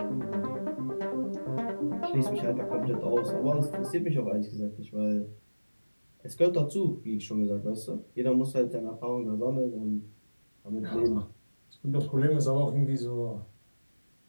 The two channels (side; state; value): both; inverted; correlation -1.00